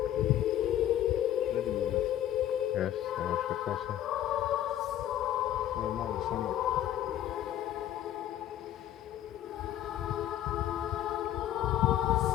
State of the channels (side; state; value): right; quieter; 12.1 dB